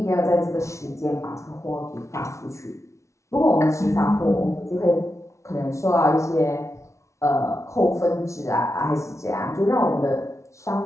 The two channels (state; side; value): late; right; 0.14 ms